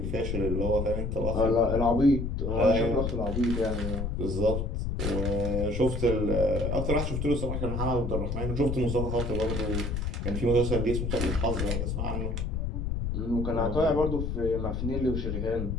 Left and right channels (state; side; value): noise; left; rumble, 1 dB below the sound